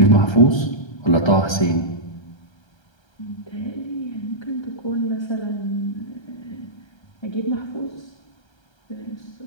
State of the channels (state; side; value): late; right; 1.3 ms